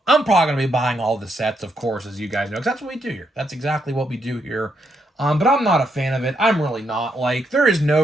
I'm probably going to be buying all the sets, of course, as you guys know, because that's what we do here. That's exactly what we do here. But I'm not a fan of it. I'm really not. There is no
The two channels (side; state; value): both; normal; correlation 0.78